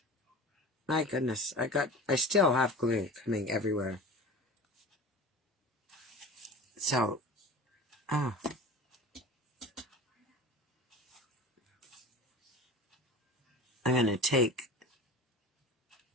My goodness, I still have glue coming everywhere. So, I'm going to take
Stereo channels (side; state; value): both; normal; correlation 0.35